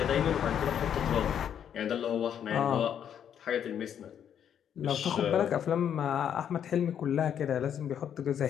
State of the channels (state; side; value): quieter; right; 9.0 dB